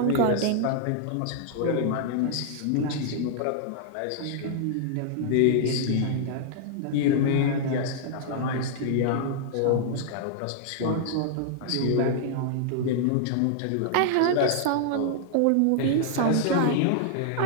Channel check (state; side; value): different; both; correlation -0.01